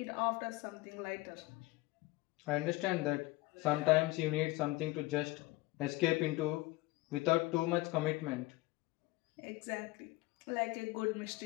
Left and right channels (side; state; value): right; quieter; 20.2 dB